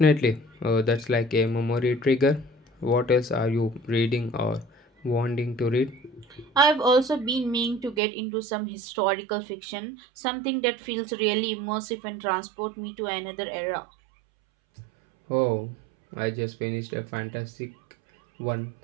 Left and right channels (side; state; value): left; drops out; at 8.0 s